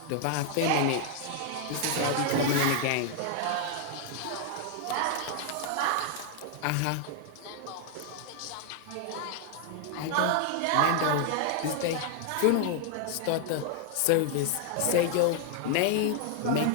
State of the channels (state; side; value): different; both; correlation 0.00